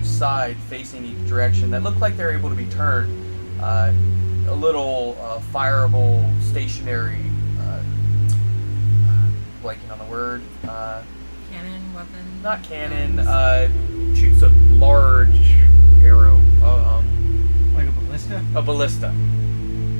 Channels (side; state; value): both; inverted; correlation -1.00